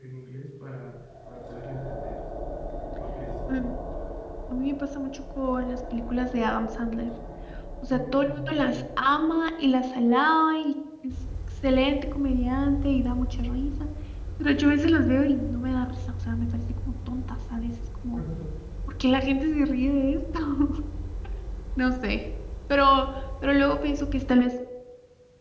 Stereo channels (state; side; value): identical; both; correlation 1.00